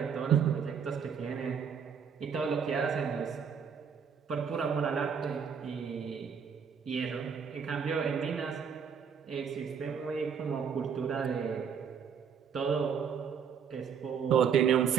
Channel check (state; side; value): quieter; left; 7.0 dB